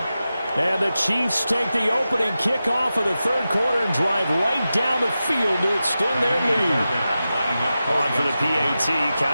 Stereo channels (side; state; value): both; inverted; correlation -0.93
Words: And the Chiefs take the opening kickoff of the 3rd quarter and drive right down the field to extend their lead. On for the PAT,